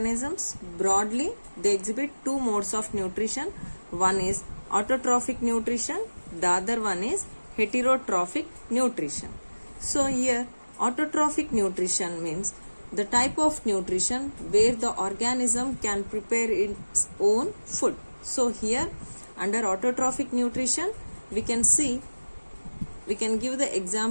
broadly they exhibit two modes of nutrition. One is autotrophic nutrition, the other one is heterotrophic nutrition. So here autotrophic nutrition means the type of nutrition where the organism can prepare its own food. So here under autotrophic nutrition we can give the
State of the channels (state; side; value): inverted; both; correlation -1.00